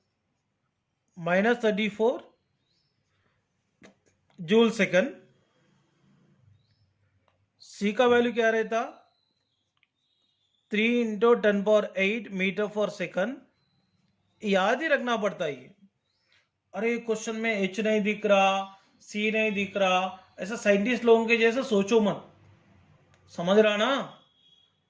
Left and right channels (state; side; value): identical; both; correlation 1.00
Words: जूल सेकंड। C का वैल्यू क्या रहता 3 इंटू 10⁻8 मीटर फॉर सेकंड। याद ही रखना पड़ता है ये। अरे क्वेश्चन में H नहीं दिख रहा, C नहीं दिख रहा, ऐसा साइंटिस्ट लोगों के जैसे सोचो मत, समझ रहा ना।